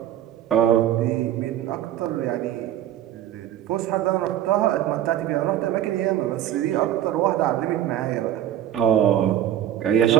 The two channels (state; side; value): quieter; left; 11.7 dB